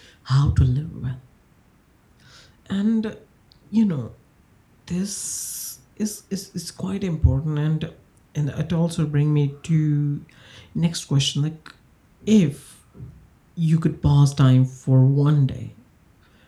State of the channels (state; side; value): identical; both; correlation 1.00